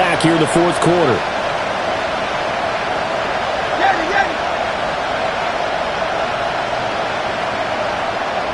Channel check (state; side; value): identical; both; correlation 1.00